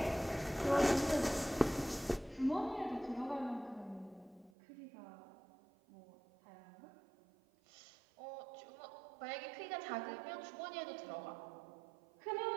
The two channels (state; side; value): drops out; left; at 4.5 s